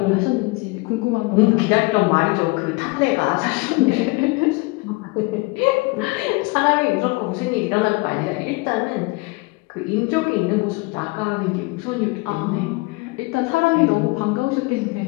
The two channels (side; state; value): right; quieter; 25.5 dB